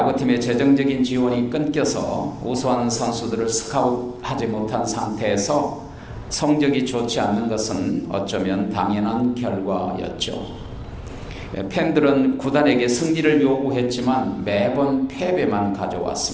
재정적인 지원이 끊겨서 우수한 선수들을 스카웃하지 못한 상태에서 성적이 좋지 않는 것은 어쩌면 당연한 결과였죠. 팬들은 구단에게 승리를 요구했지만 매번 패배만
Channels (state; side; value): identical; both; correlation 1.00